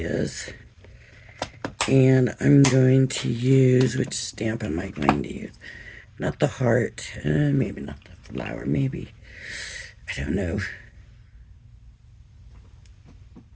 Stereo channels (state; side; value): identical; both; correlation 1.00